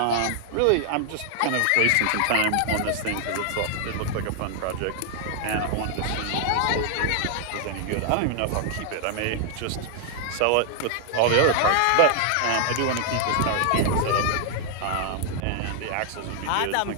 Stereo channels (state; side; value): different; both; correlation 0.00